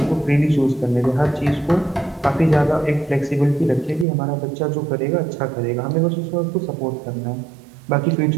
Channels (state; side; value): drops out; left; at 4.0 s